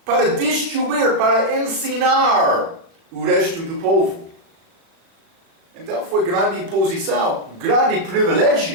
para distribuir, para ensinar o resto do povo. Então foi grande posição, grande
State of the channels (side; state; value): left; late; 36 ms